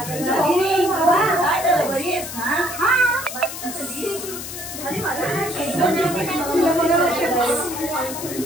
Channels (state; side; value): noise; left; hiss, 9 dB below the sound